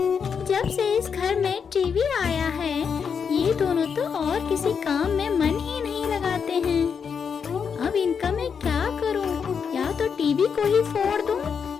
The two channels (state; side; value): quieter; right; 6.5 dB